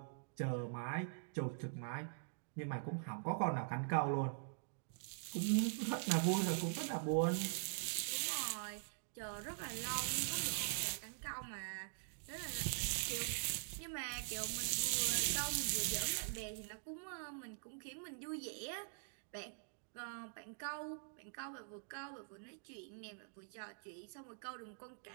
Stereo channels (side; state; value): left; silent; digital silence